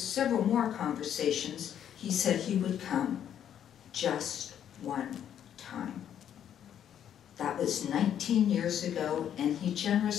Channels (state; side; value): quieter; right; 9.7 dB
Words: more conversations, he said he would come just one time. That was 19 years ago, and he